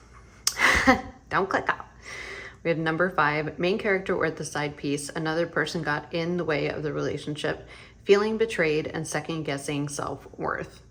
Don't click off. We have number 5, main character or the side piece. Another person got in the way of the relationship, feeling betrayed and second guessing self-worth.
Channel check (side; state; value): both; identical; correlation 1.00